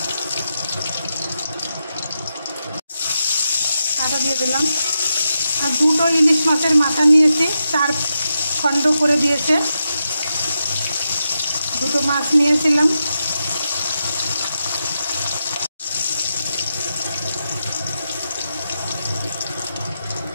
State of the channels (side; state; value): both; inverted; correlation -0.87